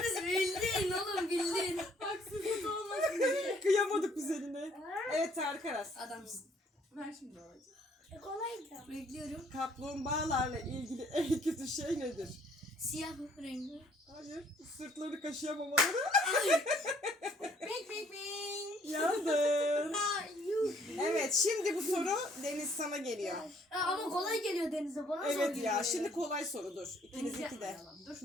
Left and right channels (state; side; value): normal; both; correlation 0.63